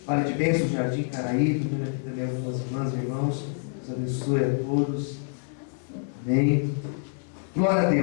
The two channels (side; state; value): right; silent; digital silence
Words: Vale de Bênção Jardim Caraí, tudo aqui também algumas irmãs e irmãos. Deus abençoe a todos. Amém. Glória a